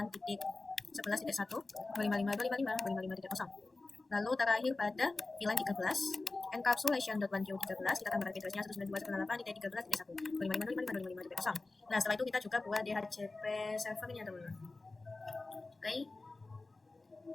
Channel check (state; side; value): quieter; right; 3.4 dB